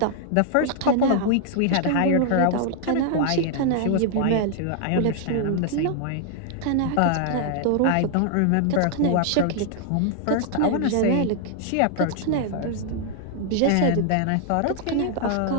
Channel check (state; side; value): different; both; correlation 0.00